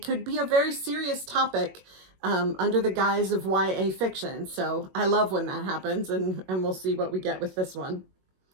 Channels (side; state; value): left; late; 21 ms